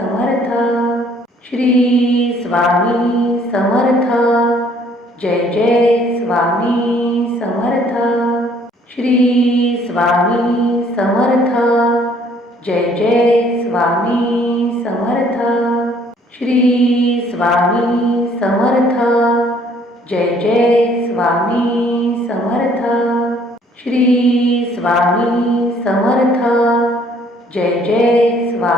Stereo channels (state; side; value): normal; both; correlation 0.61